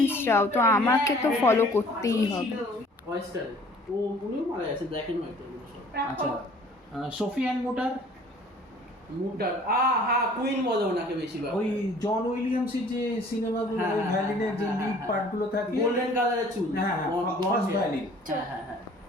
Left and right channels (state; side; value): normal; both; correlation 0.53